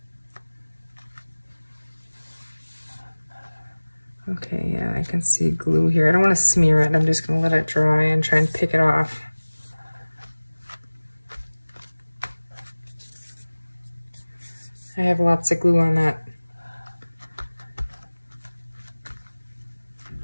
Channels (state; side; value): inverted; both; correlation -1.00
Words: Okay, yeah, I can see glue here. I don't want to smear it. I'm just going to let it dry and try and pick it off. I have lots of glue on that.